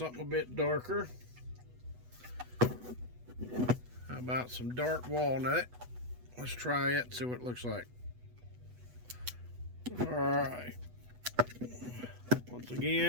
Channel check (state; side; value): late; left; 8.1 ms